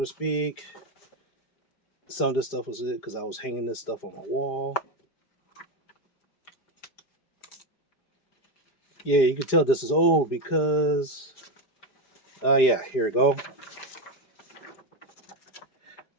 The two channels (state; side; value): late; right; 4.9 ms